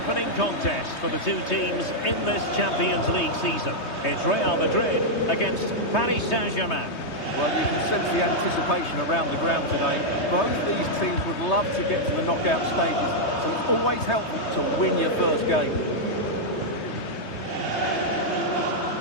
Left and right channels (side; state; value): right; late; 3.2 ms